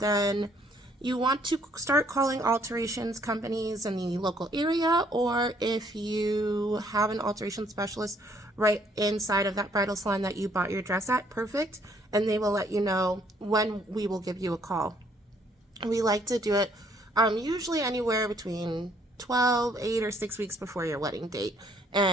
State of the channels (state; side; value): normal; both; correlation 0.65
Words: you want to start calling alterations companies in the local area, or if you have an alteration specialist right inside of that bridal salon that you bought your dress at, perfect, and they will let you know when we will give you a call. We like to do it usually anywhere between 12, 8, or 6 weeks before your wedding date.